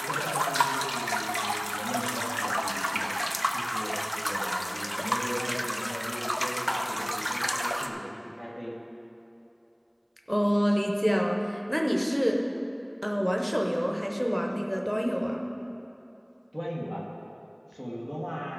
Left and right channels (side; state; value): both; identical; correlation 1.00